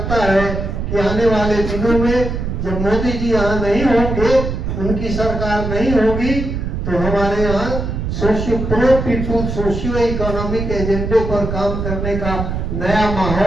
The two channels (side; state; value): right; noise; rumble, 3 dB below the sound